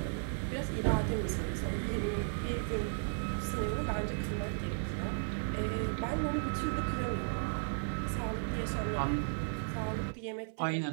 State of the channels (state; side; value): silent; left; 54 dB below the other